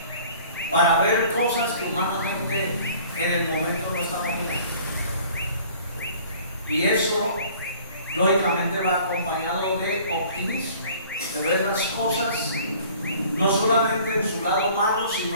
para ver cosas que humanamente en el momento no estamos viendo. Y eso, lógicamente, va acompañado de optimismo, de ver las cosas no solamente en su lado malo,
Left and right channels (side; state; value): both; inverted; correlation -0.51